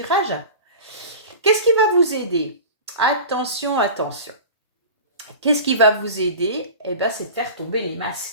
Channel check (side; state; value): both; inverted; correlation -0.34